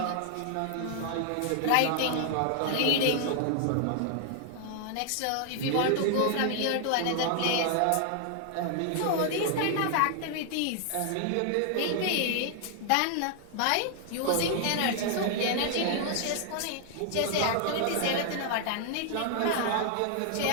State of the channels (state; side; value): different; both; correlation 0.00